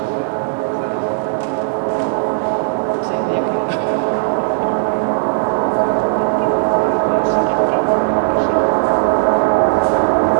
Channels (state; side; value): silent; left; 65 dB below the other